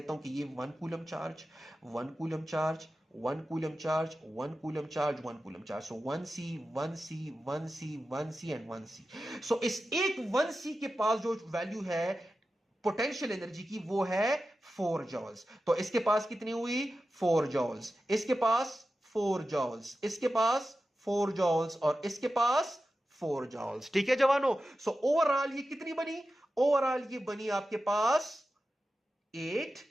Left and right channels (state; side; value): normal; both; correlation 0.93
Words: हूं कि ये 1 coulomb charge, 1 coulomb charge, 1 coulomb charge, 1 coulomb charge, 1 coulomb charge. So 1c 1c 1c 1c and 1c। सो इस एक 1c के पास जो वैल्यू है पोटेंशियल एनर्जी की वो है 4 जॉल्स। तो इसके पास कितनी हुई 4 जॉल्स, इसके पास 4 जॉल्स, इसके पास 4 जॉल्स और इसके पास 4 जॉल्स। ठीक है जवानों, सो ओवरऑल ये कितनी बनी, ओवरऑल ये बनी आपके पास 8